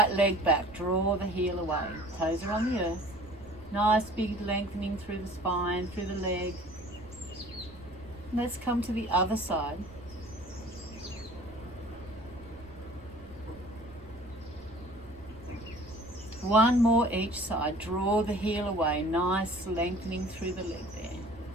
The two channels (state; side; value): noise; right; rumble, 21 dB below the sound